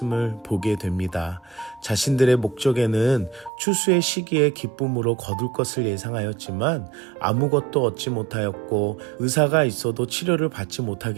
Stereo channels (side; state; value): left; drops out; at 3.5 s